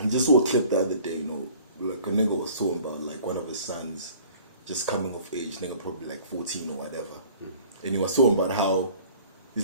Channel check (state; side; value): inverted; both; correlation -0.50